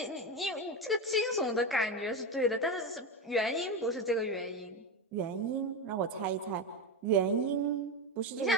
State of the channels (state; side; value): normal; both; correlation 0.15